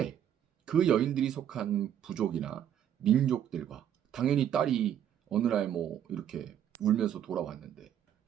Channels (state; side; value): quieter; left; 10.0 dB